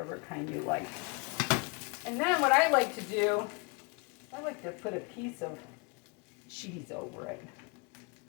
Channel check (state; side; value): quieter; right; 29.9 dB